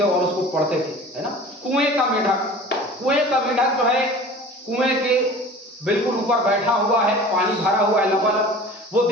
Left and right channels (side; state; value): both; normal; correlation 0.41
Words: और उसको पढ़ते थे, है ना। कुएं का मेढक जो है कुएं के बिल्कुल ऊपर बैठा हुआ है, पानी भरा हुआ है लबालब। वो